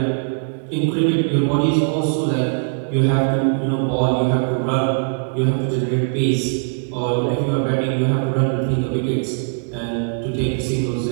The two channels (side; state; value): left; silent; 65 dB below the other